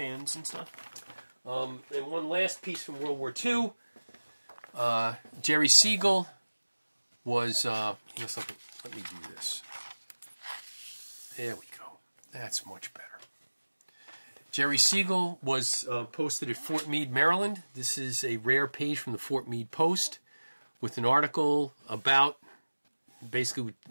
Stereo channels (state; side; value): inverted; both; correlation -1.00